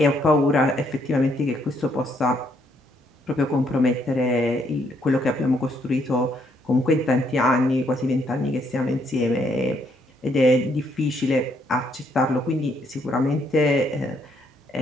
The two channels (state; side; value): normal; both; correlation 0.72